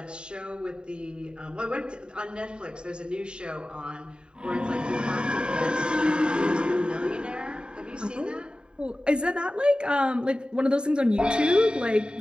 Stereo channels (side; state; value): left; late; 0.051 ms